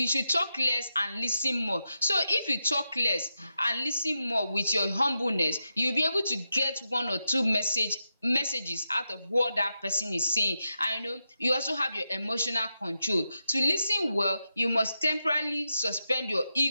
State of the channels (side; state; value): both; inverted; correlation -0.88